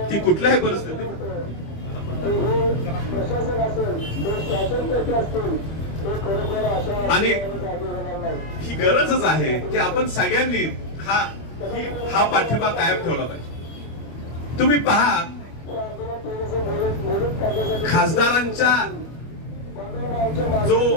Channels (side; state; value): right; late; 25 ms